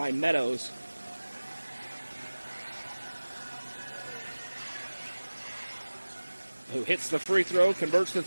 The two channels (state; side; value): inverted; both; correlation -1.00